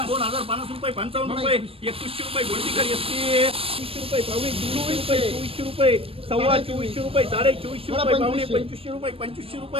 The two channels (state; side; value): late; left; 0.27 ms